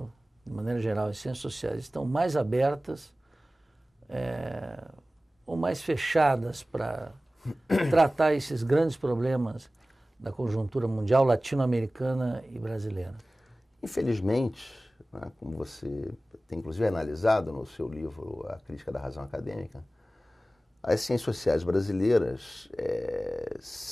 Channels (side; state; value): both; normal; correlation 0.97